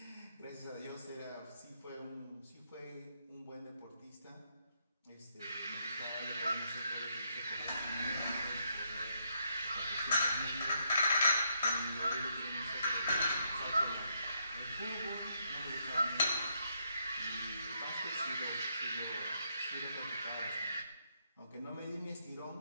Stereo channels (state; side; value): inverted; both; correlation -0.76